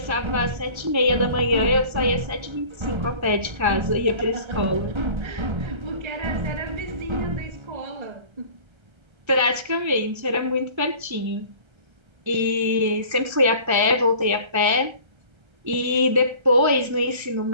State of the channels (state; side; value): late; left; 1.3 ms